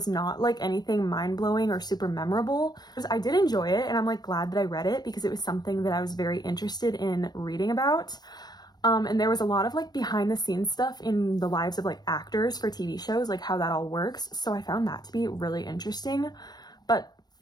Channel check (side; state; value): right; late; 0.20 ms